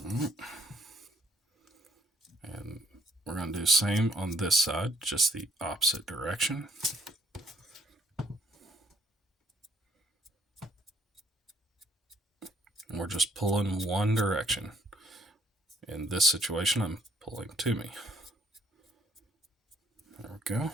And we're going to do the same on this side, just the opposite direction. And we're just pulling one direction. In this situation, I'm pulling to me. There we go.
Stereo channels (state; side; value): normal; both; correlation 0.66